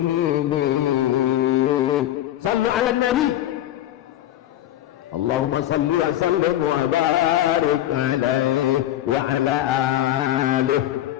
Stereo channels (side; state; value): right; quieter; 13.1 dB